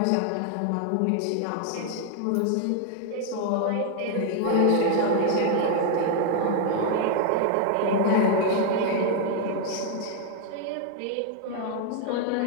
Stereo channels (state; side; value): different; both; correlation 0.00